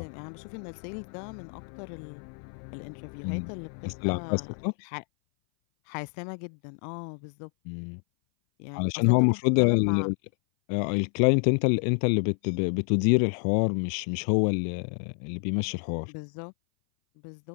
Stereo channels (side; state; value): right; silent; 58 dB below the other